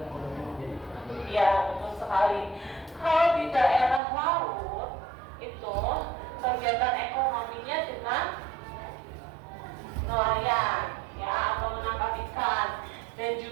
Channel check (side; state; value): left; drops out; at 4.0 s